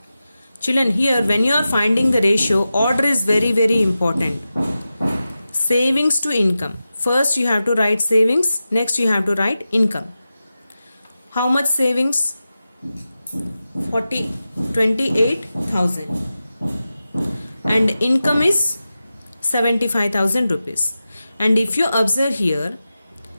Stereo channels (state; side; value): inverted; both; correlation -0.93